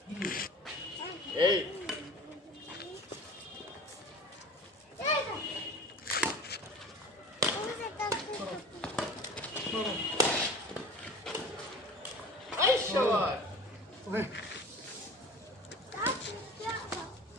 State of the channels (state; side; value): normal; both; correlation 0.40